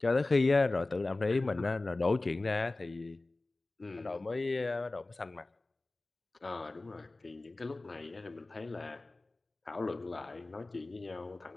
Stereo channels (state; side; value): quieter; right; 3.1 dB